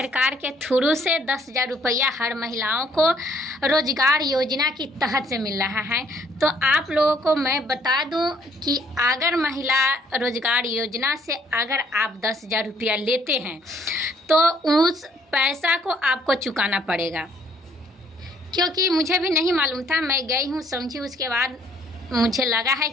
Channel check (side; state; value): both; normal; correlation 0.64